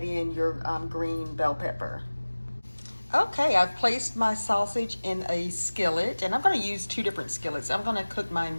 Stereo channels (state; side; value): inverted; both; correlation -1.00